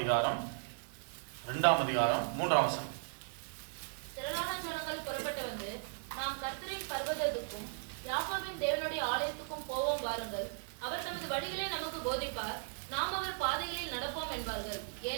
2ஆம் அதிகாரம் 3ஆம் வசனம். திரளான ஜனங்கள் புறப்பட்டு வந்து, நாம் கர்த்தரின் பர்வதத்துக்கும் யாக்கோபின் தேவனுடைய ஆலயத்துக்கும் போவோம் வாருங்கள். அவர் தமது வழிகளை நமக்கு போதிப்பார், நாம் அவர் பாதைகளில் நடப்போம் என்பார்கள்.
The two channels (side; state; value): left; silent; 53 dB below the other